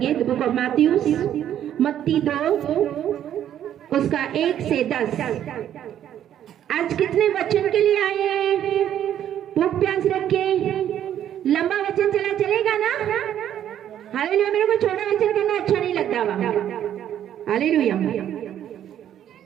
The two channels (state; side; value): quieter; left; 10.6 dB